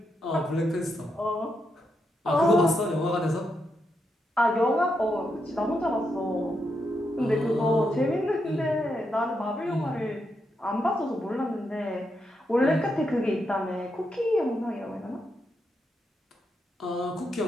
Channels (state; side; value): normal; both; correlation 0.82